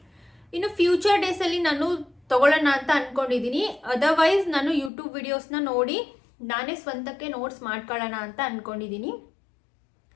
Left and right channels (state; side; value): drops out; right; at 4.9 s